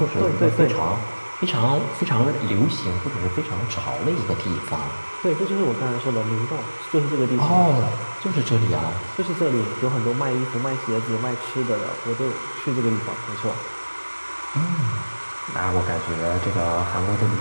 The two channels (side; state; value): both; inverted; correlation -1.00